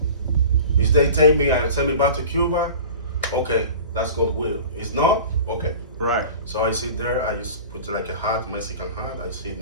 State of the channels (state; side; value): inverted; both; correlation -0.39